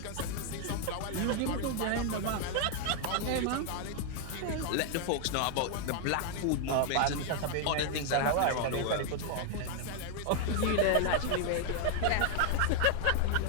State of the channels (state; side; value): different; both; correlation 0.00